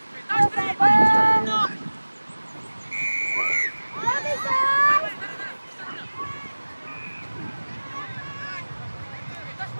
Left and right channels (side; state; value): both; inverted; correlation -1.00